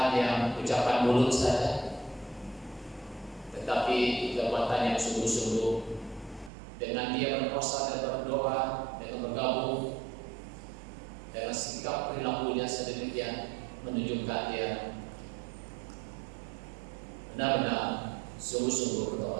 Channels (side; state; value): left; drops out; at 6.5 s